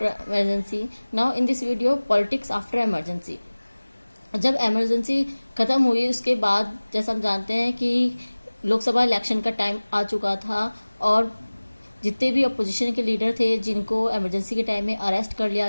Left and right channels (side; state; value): both; inverted; correlation -1.00